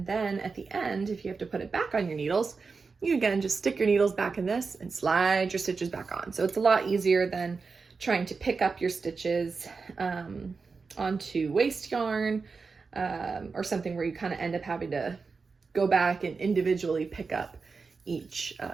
then at the end, if you have to put it back on your needles, you again just stick your needles back in this and slide your stitches back on. So it's a lot easier than trying to pick up your stitches onto waste yarn or something where you kind of end up having to go back and individually pick up each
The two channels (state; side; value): quieter; left; 4.7 dB